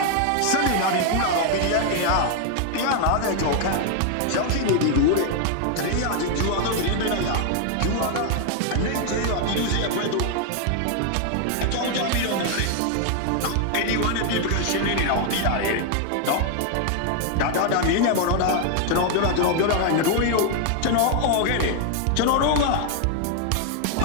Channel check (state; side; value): different; both; correlation 0.00